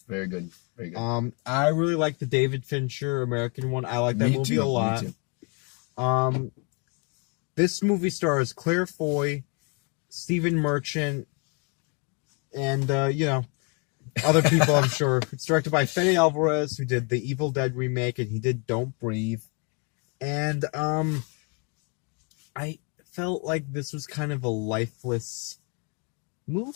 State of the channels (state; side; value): quieter; right; 33.9 dB